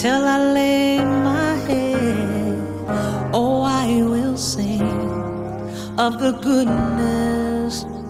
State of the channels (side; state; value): both; identical; correlation 1.00